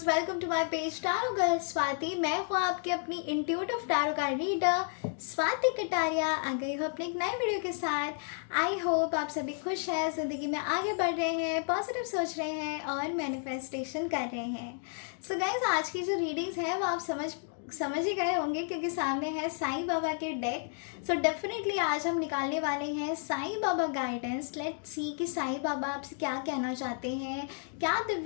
welcome to my page tarot girl Swati. मैं हूँ आपकी अपनी intuitive tarot card reader Swati Kataria. आ गई हूँ अपने एक नए वीडियो के साथ। आई होप आप सभी खुश हैं, ज़िंदगी में आगे बढ़ रहे हैं, पॉजिटिव सोच रहे हैं और मैनिफेस्टेशन कर रहे हैं। सो गाइस, आज की जो रीडिंग्स है वो आप समझ ही गए होंगे क्योंकि सामने है साईं बाबा के डेक। सो डेफिनेटली आज हम निकालने वाले हैं Sai Baba guidance. Let's see कि साईं बाबा आपसे क्या कहना चाहते हैं, क्या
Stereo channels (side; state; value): right; silent; 57 dB below the other